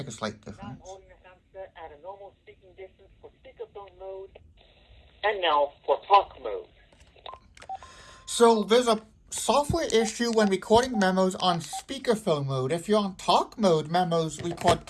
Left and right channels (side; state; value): both; identical; correlation 1.00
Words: a slight Now I'm difference. holding the handset at a normal speaking distance for speakerphone mode. And now for talk mode. So there's a software issue when recording memos on speakerphone mode. If you're on talk mode, memos record